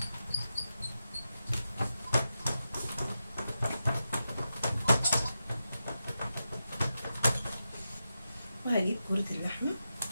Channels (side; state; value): both; inverted; correlation -0.89